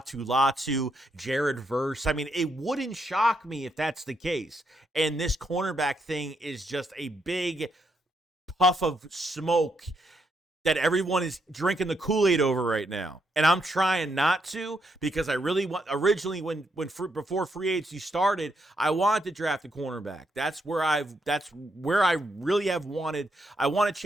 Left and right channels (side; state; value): both; normal; correlation 0.78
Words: Latu, Jared Verse. It wouldn't shock me if that's the case. And this cornerback thing is just a big puff of smoke that everyone is drinking the Kool-Aid over right now. And I'm trying not to because I really want, originally before free agency started, I wanted to draft a cornerback. That's where I really have wanted. I want to